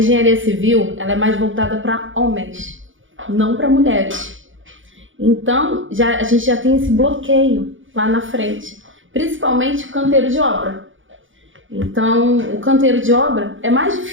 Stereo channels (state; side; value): late; left; 0.57 ms